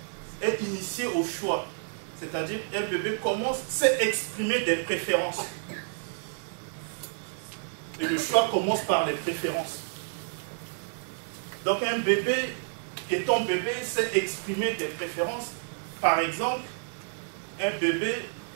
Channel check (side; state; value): left; silent; digital silence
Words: est initié au choix. C'est-à-dire qu'un bébé sait exprimer des préférences. Et le choix commence par les préférences. Donc un bébé, étant bébé, sait exprimer des préférences. Par exemple, un bébé